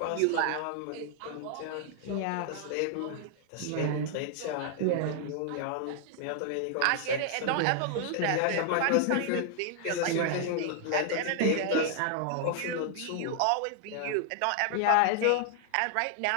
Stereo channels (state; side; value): different; both; correlation 0.00